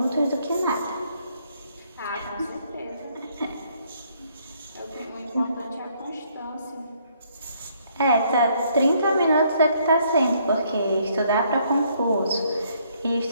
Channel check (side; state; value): both; inverted; correlation -0.68